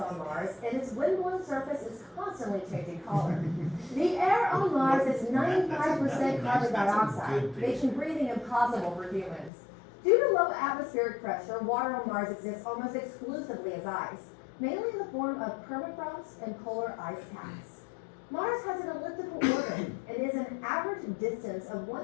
Mars, and its windblown surface is constantly changing color. The air on Mars is 95% carbon dioxide, making breathing impossible for humans. Due to low atmospheric pressure, water on Mars exists almost exclusively as ice, mainly in the form of permafrost and polar ice caps. Mars has an elliptical orbit and is an average distance of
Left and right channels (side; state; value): right; drops out; at 9.5 s